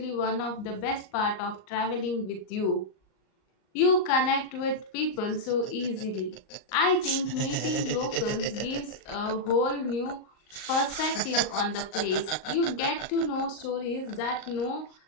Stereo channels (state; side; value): late; right; 38 ms